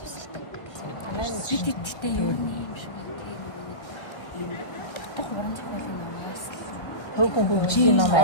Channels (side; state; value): right; late; 1.6 ms